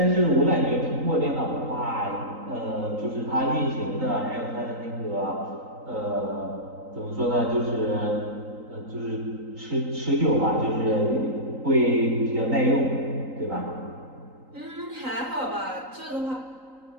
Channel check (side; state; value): left; late; 3.9 ms